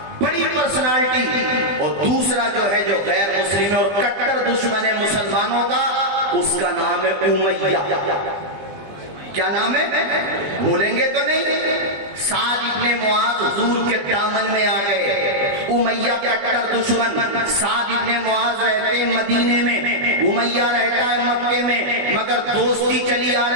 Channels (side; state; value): left; late; 20 ms